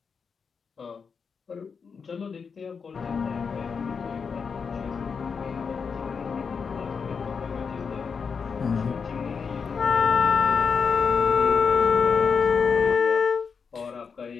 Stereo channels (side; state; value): right; quieter; 5.7 dB